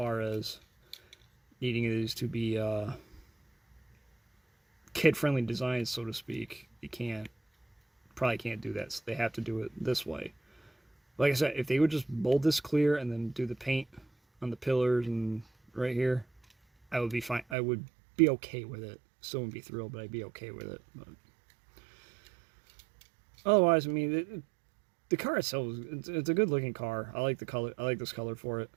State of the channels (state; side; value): drops out; left; at 17.6 s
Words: as needing these to be kid-friendly designs, so to speak, you probably can't do that. So they have to do it this way. Like I said, if they would just mold this clear and then do the paint on the pillars and right here, I would be fine. I would be okay with it. Still wouldn't be thrilled, but I'd be okay with it. But otherwise, I mean, the car itself, it's a good looking car. I like the color. I like this color for it.